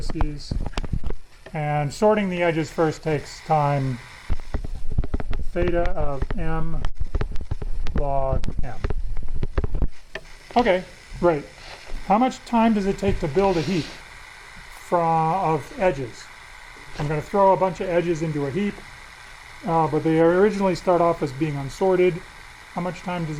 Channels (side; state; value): both; identical; correlation 1.00